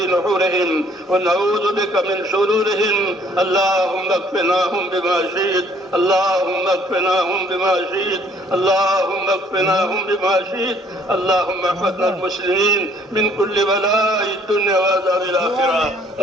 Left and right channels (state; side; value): normal; both; correlation 0.61